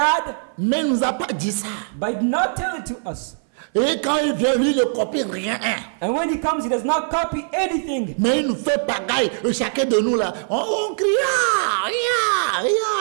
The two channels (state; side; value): silent; left; 58 dB below the other